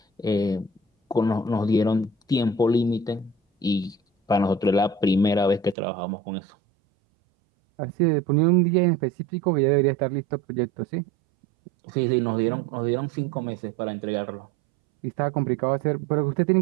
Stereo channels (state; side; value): drops out; left; at 5.8 s